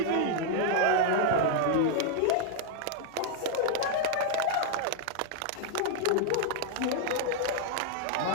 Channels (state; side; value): different; both; correlation 0.00